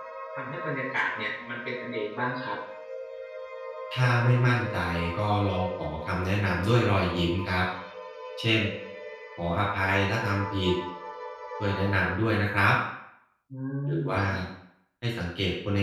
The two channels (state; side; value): identical; both; correlation 1.00